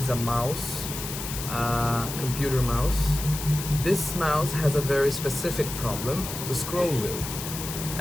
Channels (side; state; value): left; noise; hiss, 7 dB below the sound